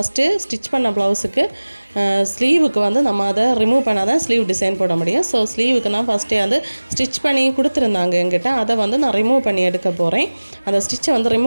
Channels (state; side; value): inverted; both; correlation -1.00